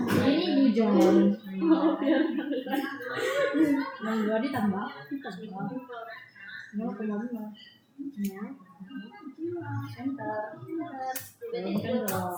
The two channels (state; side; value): identical; both; correlation 1.00